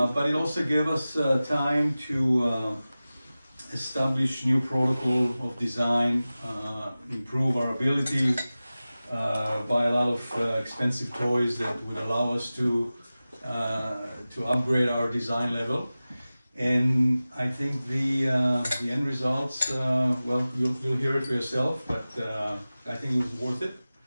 it also gave us time to establish new protocol of design, improve our ability, buy a lot of expensive toys that would allow us to upgrade our design level. And I think the end results, well, you'll hear it for yourself, but I think it was worth it.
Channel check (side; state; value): both; inverted; correlation -0.96